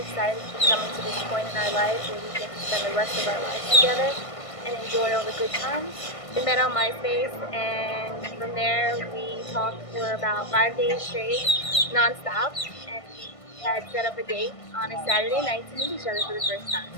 to be coming to this point in our life where we get to spend the rest of our lives together and enjoy all the good times. We met on MySpace, and from there we talked for about 5 days straight, nonstop, and we had set up a date on a Saturday night to meet each other for the first time.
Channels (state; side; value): late; right; 1.5 ms